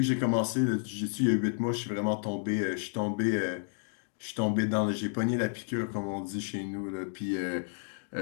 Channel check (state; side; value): silent; right; digital silence